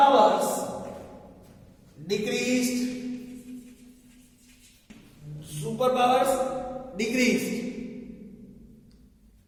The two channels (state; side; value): identical; both; correlation 1.00